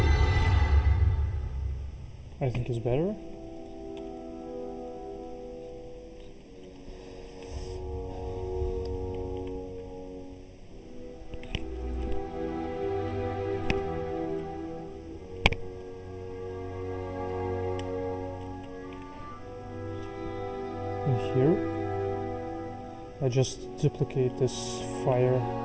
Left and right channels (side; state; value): both; identical; correlation 1.00